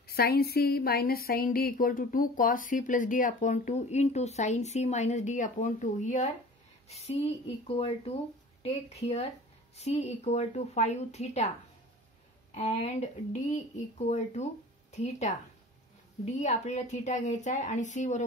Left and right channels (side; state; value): both; normal; correlation 0.42